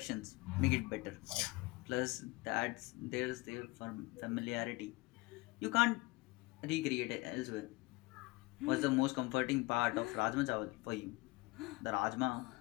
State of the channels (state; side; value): quieter; right; 23.2 dB